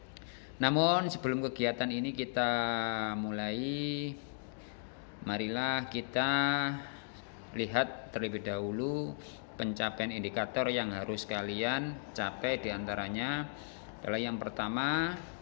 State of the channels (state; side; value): silent; right; digital silence